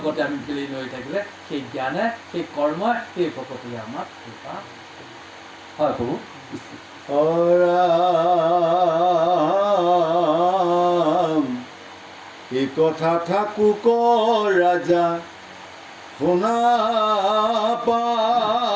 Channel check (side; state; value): both; identical; correlation 1.00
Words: আমি বিলীন হৈ থাকিলে সেই জ্ঞানে সেই কৰ্মই সেই ভকতিয়ে আমাক কৃপা হয় প্ৰভু এই কথা থাকো ক ৰাজা শুনা